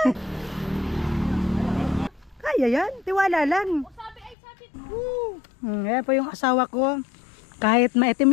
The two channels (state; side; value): drops out; right; at 4.4 s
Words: Kaya yan, tiwala lang. Ayan po yung asawa ko. Kahit